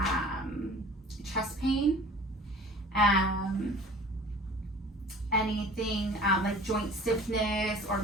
chest pain? Anything like joint stiffness or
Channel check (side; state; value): both; normal; correlation 0.45